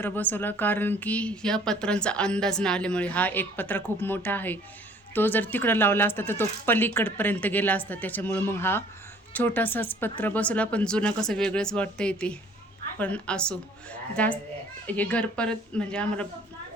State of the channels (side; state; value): both; normal; correlation 0.55